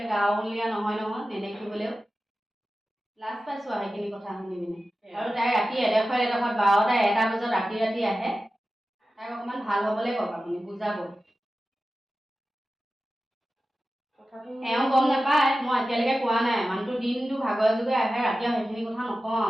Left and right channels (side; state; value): both; normal; correlation 0.94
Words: গাঁৱলীয়া নহয় নেদেখিবলৈও। লাজ পাইছোঁ আৰু সেইখিনি কথা শুনি পিনে। আৰু তাই ৰাতি এডোখৰ 12টা 1টা বজাত ৰাতি আহে। তাইক অকণমান ভাল হ'বলৈ কওক, আপুনি বুজাব। এওঁ গম নাপায়, মই এতিয়ালৈকে কোৱা নাই। মানুহটো দিনটো ভাগৰে যুগে আহে, ৰাতি সেইখিনি কথা নকওঁ